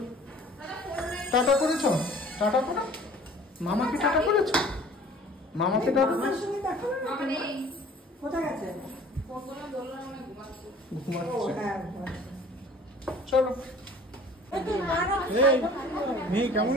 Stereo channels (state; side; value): normal; both; correlation 0.49